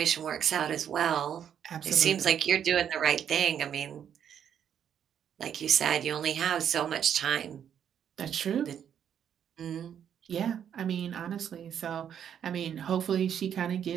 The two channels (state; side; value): quieter; left; 8.9 dB